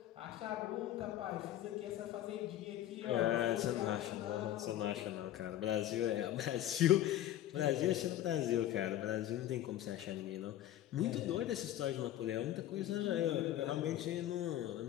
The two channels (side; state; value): right; quieter; 12.8 dB